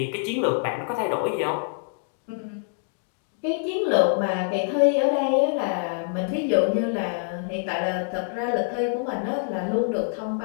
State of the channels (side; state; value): right; silent; 61 dB below the other